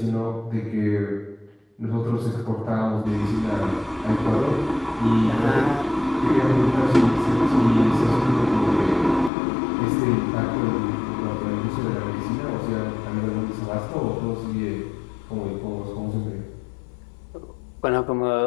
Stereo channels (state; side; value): drops out; right; at 9.3 s